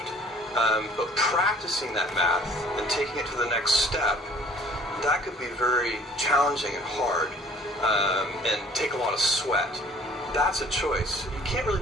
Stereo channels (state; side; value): normal; both; correlation 0.52